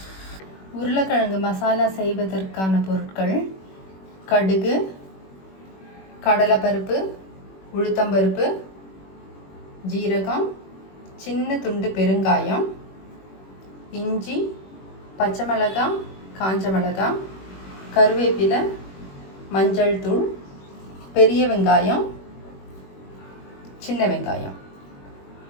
உருளைக்கிழங்கு மசாலா செய்வதற்கான பொருட்கள்: கடுகு, கடலைப்பருப்பு, உளுத்தம்பருப்பு, ஜீரகம், சின்ன துண்டு பெருங்காயம், இஞ்சி, பச்சை மிளகாய், காஞ்ச மிளகாய், கருவேப்பிலை, மஞ்சள் தூள், பெரிய வெங்காயம், சின்ன வெங்காயம்.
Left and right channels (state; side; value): late; right; 21 ms